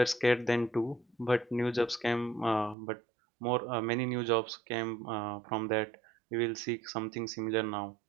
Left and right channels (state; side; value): drops out; left; at 2.8 s